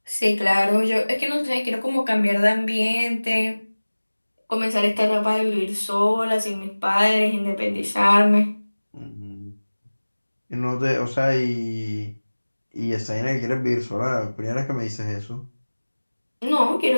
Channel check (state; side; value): inverted; both; correlation -1.00